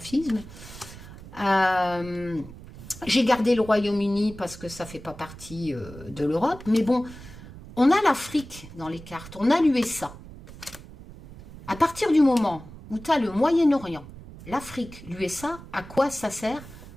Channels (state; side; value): noise; right; rumble, 16 dB below the sound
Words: J'ai gardé le Royaume-Uni parce que ça ne fait pas partie de l'Europe. Mais bon, on a l'Afrique dans les cartes. On a l'USA. À partir du moment où tu as le Moyen-Orient, l'Afrique, l'USA, à quoi ça sert?